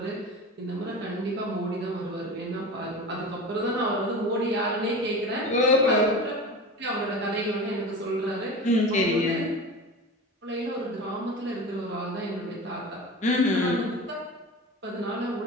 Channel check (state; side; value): normal; both; correlation 0.32